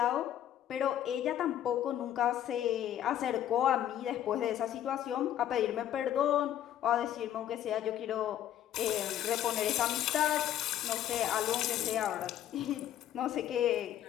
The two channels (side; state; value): right; quieter; 11.4 dB